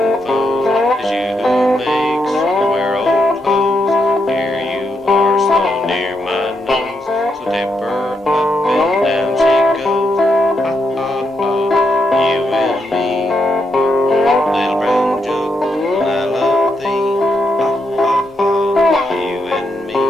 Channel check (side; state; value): both; normal; correlation 0.81